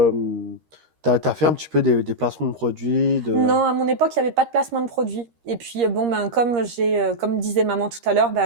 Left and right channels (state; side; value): late; left; 13 ms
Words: fait un petit peu des placements de produits Non, à mon époque, il n'y avait pas de placement de produits. Et puis, comme disait maman tout à l'heure,